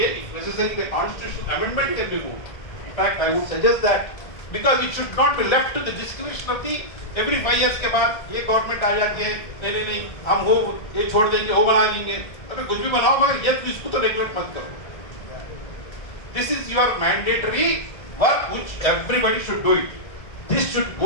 if necessary, the constitutional amendment can be moved. In fact, I would suggest that because it should not be left to the discretion of the every 5 years के बाद ये government आ जाती है, नहीं हम वो ये छोड़ देंगे, वो बना लेंगे. अबे कुछ भी बनाओ मगर ये इसको तो रेगुलेट मत करो. This is your mandatory work which everybody should do it. This should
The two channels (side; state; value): right; late; 1.7 ms